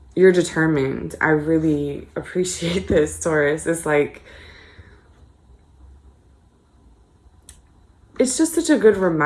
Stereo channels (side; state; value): both; identical; correlation 1.00